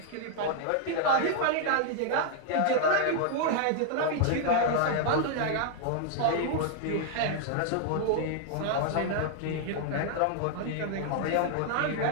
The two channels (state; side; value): different; both; correlation 0.00